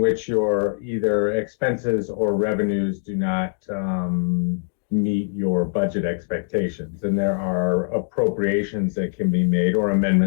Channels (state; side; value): silent; right; digital silence